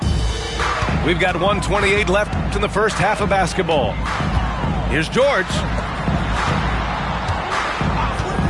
We've got 1:28 left in the first half of basketball. Here's George.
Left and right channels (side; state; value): both; identical; correlation 1.00